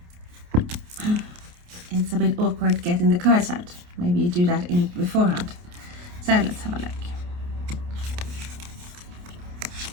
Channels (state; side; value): late; left; 28 ms